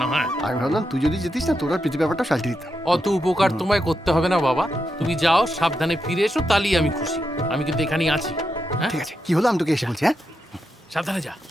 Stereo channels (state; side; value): normal; both; correlation 0.85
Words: না। হ্যাঁ, আমি ভাবলাম তুই যদি যেতিস না, তোর আর প্রীতি ব্যাপারটা সাল্টে দিতাম। অত উপকার তোমায় করতে হবে না বাবা। তুমি যাও, সাবধানে ফিরে এসো, তাহলেই আমি খুশি। আমি কিন্তু এখানেই আছি। হ্যাঁ ঠিক আছে, কি হলো আমি তোকে এসে বলছি। হ্যাঁ, সাবধানে যা।